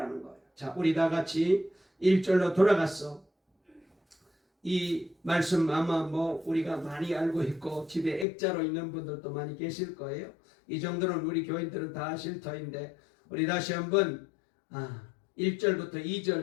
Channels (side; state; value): right; drops out; at 8.2 s